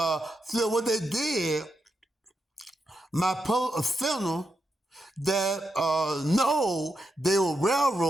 what they did, my funeral, that no, they were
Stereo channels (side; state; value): both; normal; correlation 0.85